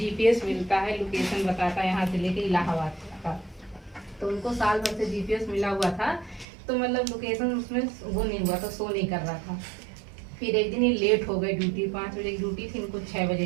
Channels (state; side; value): drops out; left; at 6.5 s